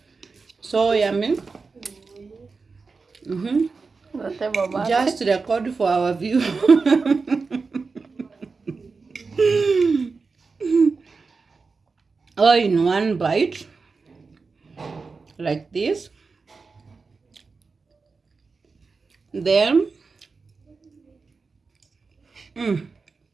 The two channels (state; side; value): quieter; left; 4.5 dB